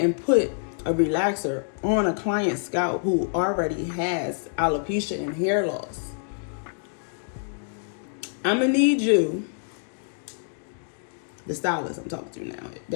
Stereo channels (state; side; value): silent; right; digital silence